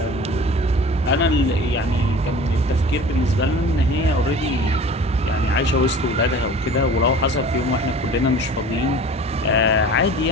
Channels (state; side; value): normal; both; correlation 0.42